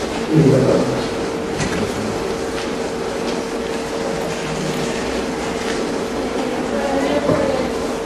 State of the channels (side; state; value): both; identical; correlation 1.00